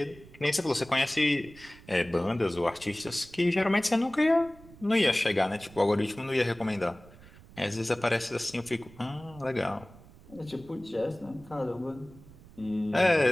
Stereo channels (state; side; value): noise; right; rumble, 21 dB below the sound